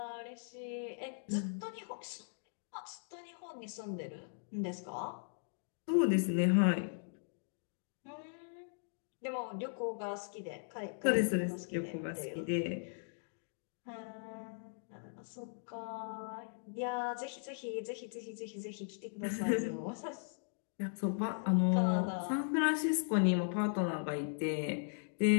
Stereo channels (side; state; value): right; silent; digital silence